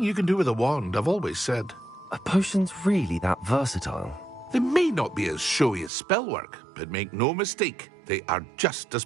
you can do with a wand, I've always said. Are potions really that versatile? They may not be as showy as spellwork, but make no mistake, they are just as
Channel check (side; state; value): left; drops out; at 5.9 s